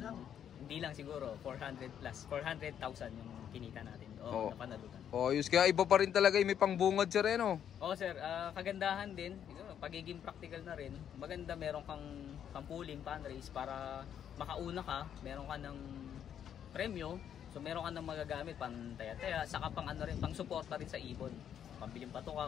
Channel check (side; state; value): right; quieter; 9.2 dB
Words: hindi lang siguro 400 plus 400,000 yung kinita natin. Napanalunan. Yus kaya iba pa rin talaga may pangbungad sir no? Sir, kagandahan din, pagiging practical na rin. Maganda meron kang pang-pulling fun race para makauna ka, meron ka ng premyo. So meron ka ng magagamit pang taya-taya, saka pang pang suporta rin sa ibon. Pambiling